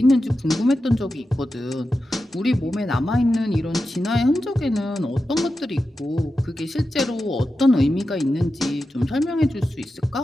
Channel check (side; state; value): both; normal; correlation 0.91